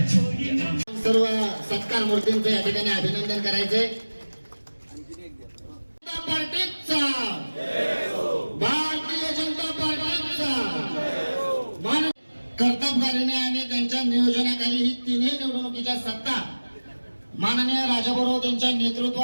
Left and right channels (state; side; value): inverted; both; correlation -1.00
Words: सर्व सत्कार मूर्तींचं या ठिकाणी अभिनंदन करायचंय. भारतीय जनता पार्टीचा कर्तबगारीने आणि त्यांच्या नियोजनाखाली ही तिन्ही निवडणुकीच्या सत्ता माननीय राजाभाऊ यांच्या